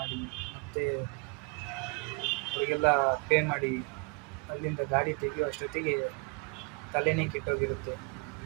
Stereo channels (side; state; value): left; quieter; 32.5 dB